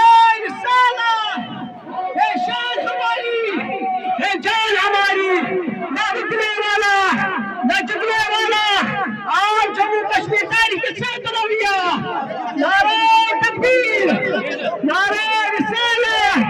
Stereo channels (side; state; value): both; identical; correlation 1.00